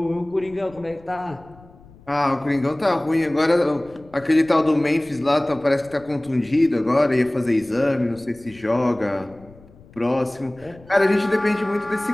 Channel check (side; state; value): left; noise; rumble, 24 dB below the sound